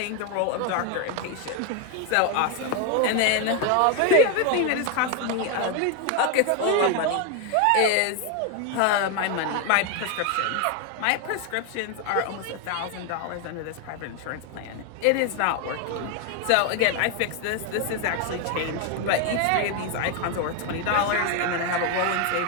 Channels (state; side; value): different; both; correlation 0.01